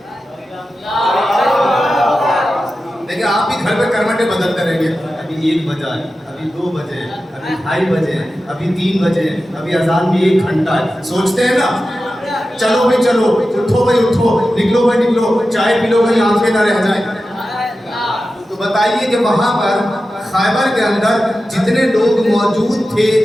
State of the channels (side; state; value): both; normal; correlation 0.93